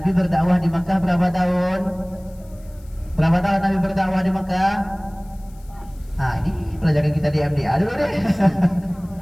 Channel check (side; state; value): left; noise; hiss, 29 dB below the sound